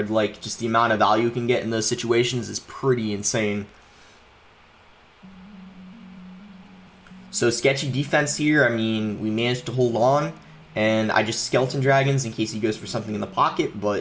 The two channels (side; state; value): both; identical; correlation 1.00